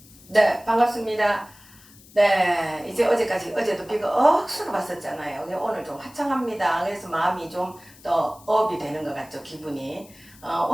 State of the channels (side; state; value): left; noise; hiss, 24 dB below the sound